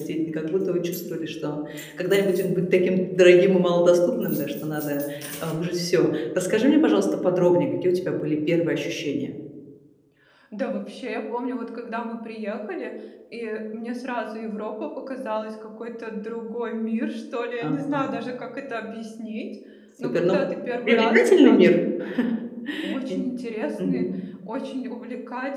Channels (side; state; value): both; identical; correlation 1.00